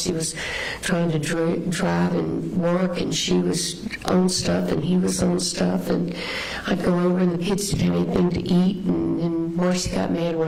was trying to drive and work, and she was on stuff, and he was on stuff. And I'd go over, and the kids didn't have anything to eat. And Marcy got mad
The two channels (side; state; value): both; identical; correlation 1.00